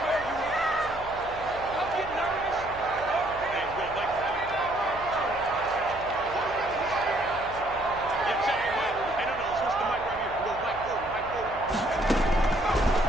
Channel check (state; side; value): noise; right; hum, 17 dB below the sound